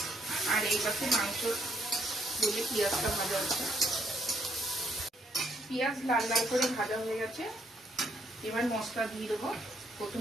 আর এই পাশে মাংস দিয়ে পেঁয়াজটা ভাজা হচ্ছে। পেঁয়াজ লাল লাল করে ভাজা হয়ে গেছে, এবার মশলা দিয়ে দেবো।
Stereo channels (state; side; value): normal; both; correlation 0.71